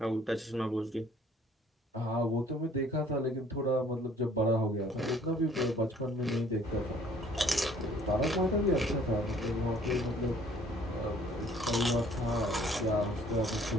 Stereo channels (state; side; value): normal; both; correlation 0.57